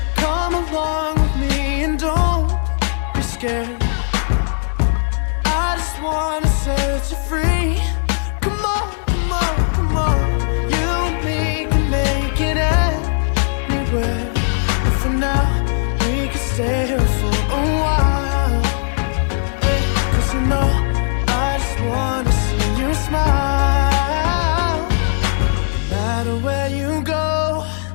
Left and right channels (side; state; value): right; silent; digital silence